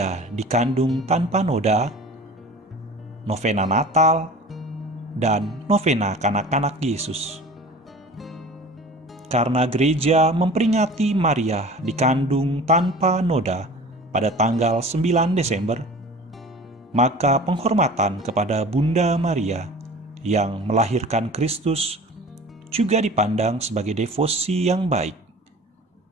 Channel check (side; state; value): both; normal; correlation 0.41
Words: dikandung tanpa noda, novena Natal, dan novena kanak-kanak Yesus. Karena gereja memperingati Maria dikandung tanpa noda pada tanggal 9 Desember, maka penghormatan kepada Bunda Maria yang melahirkan Kristus juga dipandang sebagai devosi yang baik.